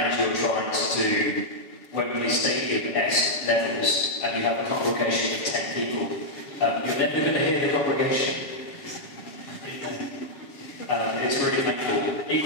you're trying to do Wembley Stadium-esque levels, and you have a congregation of 10 people, you're never going to hear the congregation. It's really painful.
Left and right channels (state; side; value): late; right; 6.6 ms